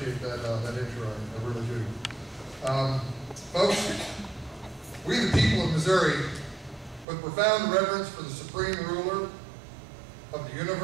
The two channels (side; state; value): left; drops out; at 7.1 s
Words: that intro. I really do. Folks, we the people of Missouri, with profound reverence for the supreme ruler of the